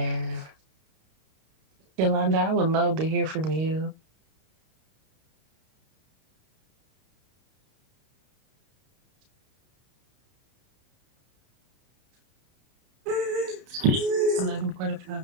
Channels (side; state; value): left; late; 32 ms